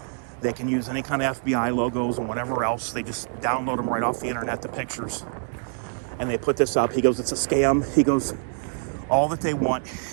They can use any kind of FBI logos and whatever else. They just download them right off the internet, the pictures. And they put this up. He goes, it's a scam. He goes, all that they want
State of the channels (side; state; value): left; silent; 61 dB below the other